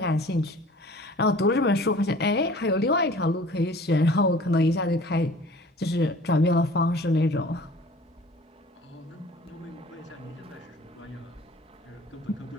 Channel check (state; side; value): normal; both; correlation 0.47